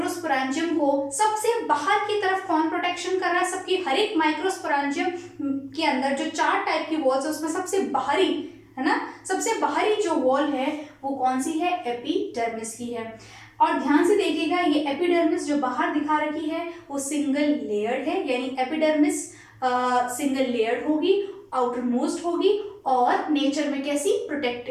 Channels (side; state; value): both; identical; correlation 1.00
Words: को सबसे बाहर की तरफ कौन प्रोटेक्शन कर रहा है, सबकी हर एक माइक्रोस्पोरेंजियम के अंदर जो 4 टाइप की वॉल्स है उसमें सबसे बाहरी है ना, सबसे बाहरी जो वॉल है वो कौन सी है, एपिडर्मिस की है। और ध्यान से देखिएगा, ये एपिडर्मिस जो बाहर दिखा रखी है वो सिंगल लेयर्ड है, यानी एपिडर्मिस सिंगल लेयर्ड होगी, आउटर मोस्ट होगी और नेचर में कैसी,